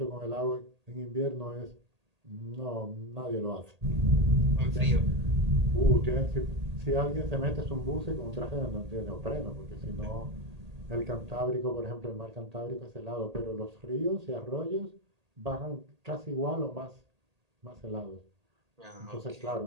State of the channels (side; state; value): left; late; 1.8 ms